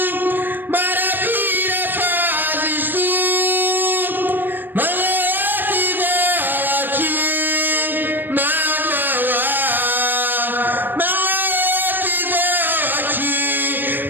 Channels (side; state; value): left; late; 0.093 ms